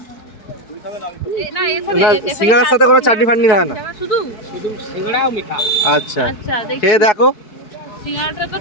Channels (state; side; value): late; right; 4.6 ms